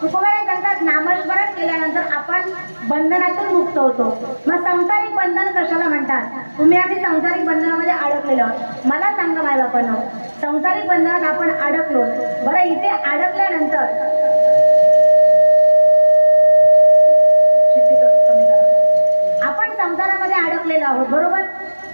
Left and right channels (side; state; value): both; inverted; correlation -1.00